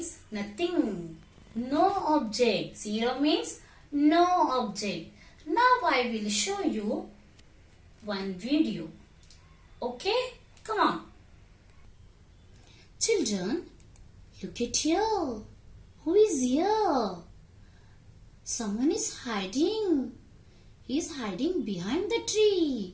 nothing. No object. Zero means no object. Now I will show you one video. Okay? Come on. Children, look at here. Who is here? Someone is hiding. He is hiding behind the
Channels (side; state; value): both; identical; correlation 1.00